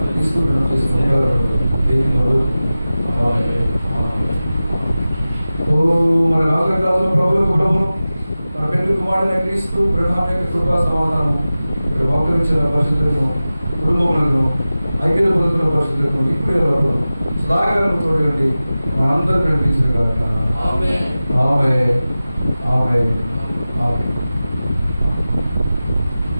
మన రాజు ప్రభువులకు ప్రభువును మన పెళ్లి కుమారుడైన క్రీస్తు ప్రణామ యొక్క కృపా సమాధానం ఇక్కడ మోకరించిన పరిస్థితులను, కుటుంబములను, ఐక్యత పొందుతున్న పరిస్థితులను ఇప్పుడే సదాకాలం చూడండి మనందరూ కనిపించిన కాక. ఆమేన్. ఆమేన్. ఆమేన్.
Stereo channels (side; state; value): both; inverted; correlation -0.96